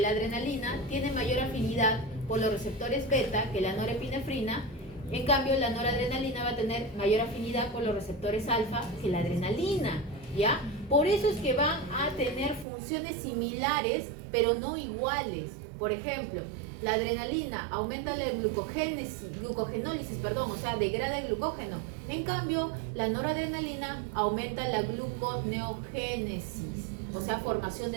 adrenalina tiene mayor afinidad por los receptores beta que la norepinefrina. En cambio, la noradrenalina va a tener mayor afinidad por los receptores alfa que la adrenalina, ¿ya? Por eso es que van a tener funciones similares, pero no iguales. Por ejemplo, la adrenalina aumenta la glucogenólisis, o sea, degrada el glucógeno. En cambio, la noradrenalina aumenta la gluconeogénesis, o sea, formación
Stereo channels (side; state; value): left; drops out; at 12.7 s